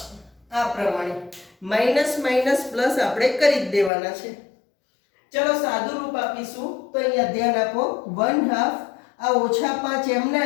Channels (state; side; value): drops out; right; at 3.9 s